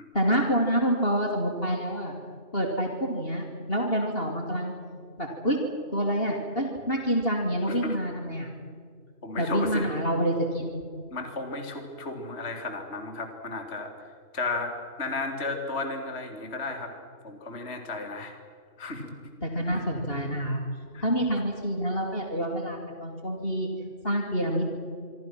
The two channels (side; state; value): right; late; 3.1 ms